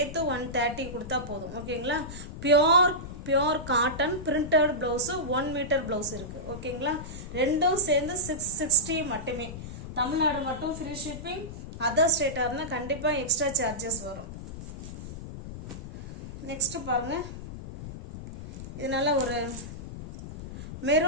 130 கொடுத்தா போதும். ஓகேங்களா? Pure cotton printed blouse 1 metre blouse இருக்கு. ஓகேங்களா? ரெண்டும் சேர்ந்து 660 மட்டுமே. தமிழ்நாடு மட்டும் ஃப்ரீ ஷிப்பிங். அதர் ஸ்டேட்டாக இருந்தால் கண்டிப்பாக எக்ஸ்ட்ரா சார்ஜஸ் வரும். நெக்ஸ்ட் பாருங்க. இது நல்ல ஒரு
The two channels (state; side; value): noise; left; rumble, 10 dB below the sound